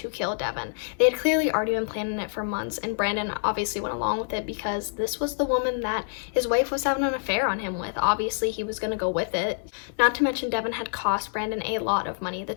kill Devon. They had clearly already been planning it for months, and Brandon obviously went along with it because this was the woman that his wife was having an affair on him with. Obviously, he was going to go with it. Not to mention, Devon had cost Brandon a lot of money. The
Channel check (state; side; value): silent; right; 60 dB below the other